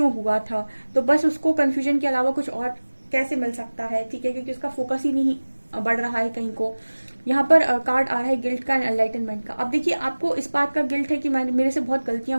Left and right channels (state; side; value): inverted; both; correlation -1.00